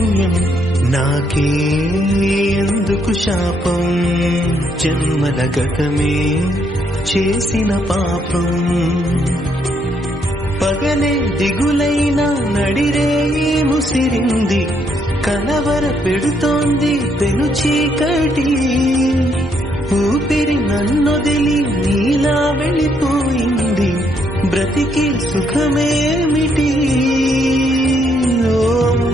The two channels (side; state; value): both; normal; correlation 0.73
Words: నాకే ఎందుకు శాపం జన్మల గతమే చేసిన పాపం పగలే దిగులైనా నడిరేయి ముసిరింది కలవర పెడుతోంది పెను చీకటి ఊపిరి నన్నొదిలి నీలా వెళ్ళిపోయింది బ్రతికి సుఖమేమిటి ఓ